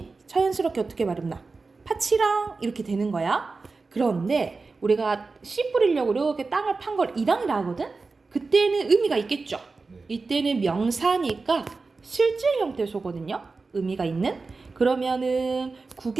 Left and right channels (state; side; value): quieter; left; 4.0 dB